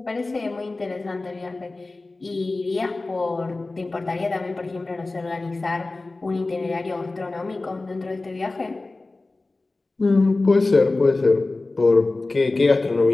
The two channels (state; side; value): quieter; right; 3.2 dB